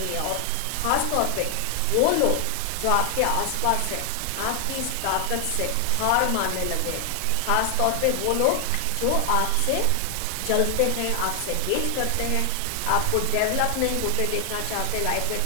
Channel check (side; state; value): both; different; correlation 0.00